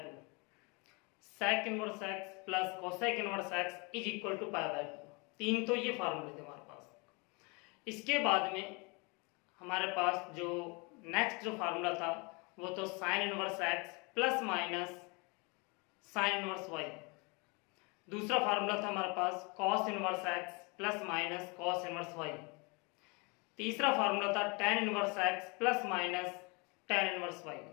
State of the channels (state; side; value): quieter; right; 29.7 dB